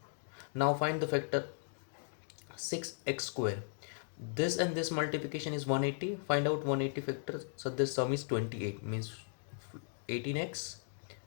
Now find the factor 6x square. This and this multiplication is 180. Find out 180 factor. So the sum is 28, means 18x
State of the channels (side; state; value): right; silent; digital silence